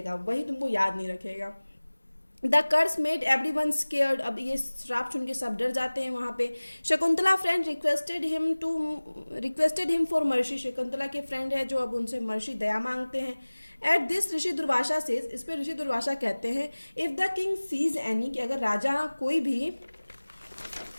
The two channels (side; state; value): both; inverted; correlation -1.00